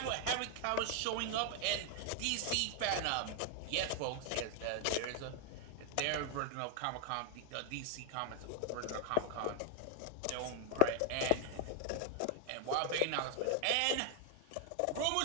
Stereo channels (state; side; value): different; both; correlation 0.00